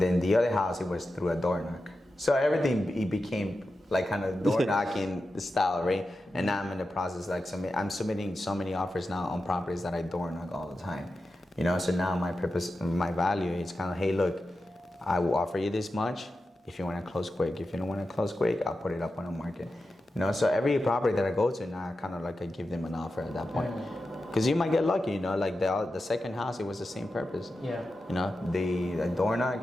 the other house, it was through a door knock. So everything, it became like kind of door knocking style, right? And now I'm in the process, like I'm submitting so many offers now on properties that I door knock all the time. You know, so now my purpose, my value is kind of, hey, look, I will offer you this much if you want to close quick. If you don't want to close quick, I'll put it up on the market. You know, so every property that I go to now, I kind of like I give them an offer at that point. Because you might get lucky, you know, like the second house, it was the same purpose. Yeah. You know, the door knock,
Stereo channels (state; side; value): normal; both; correlation 0.91